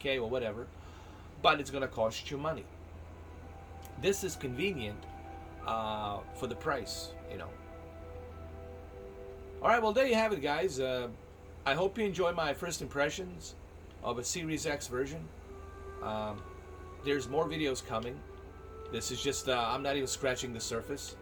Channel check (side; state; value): both; identical; correlation 1.00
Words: or whatever, but it's going to cost you money. This is convenient for the price, you know. All right, well, there you have it, guys. I hope you enjoy my first impressions of a Series X version. There's more videos coming. This is just, I'm not even scratching the surface.